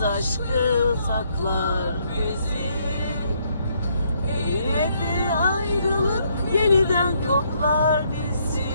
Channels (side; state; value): both; inverted; correlation -0.71